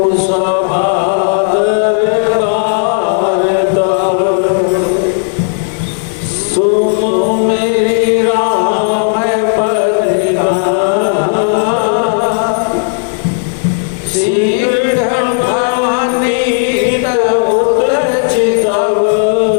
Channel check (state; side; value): silent; right; digital silence